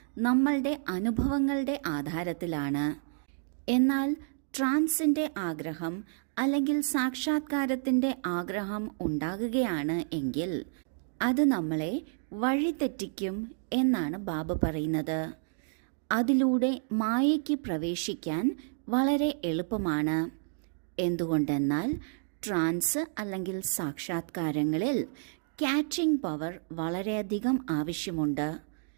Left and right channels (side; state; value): left; silent; digital silence